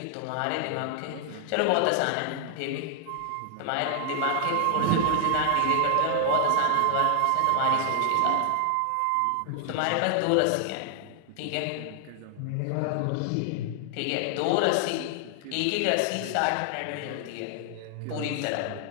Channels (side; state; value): both; different; correlation 0.00